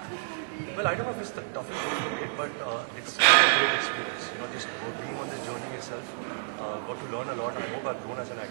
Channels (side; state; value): left; silent; digital silence